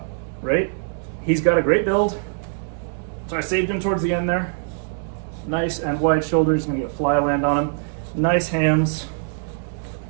right? He's got a great build, so I saved him towards the end there. Nice and wide shoulders, gonna get a fly land on him. Nice hams.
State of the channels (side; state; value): left; silent; 64 dB below the other